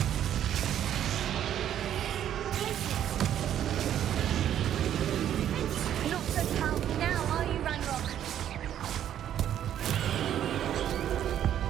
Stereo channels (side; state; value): left; quieter; 10.6 dB